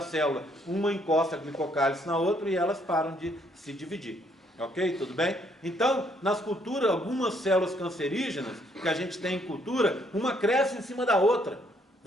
célula. Uma encosta a glicocálice na outra e elas param de se dividir. Ok? Tudo bem? Então, nas culturas, algumas células cancerígenas que a gente tem em cultura, uma cresce em cima da outra.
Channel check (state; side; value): normal; both; correlation 0.69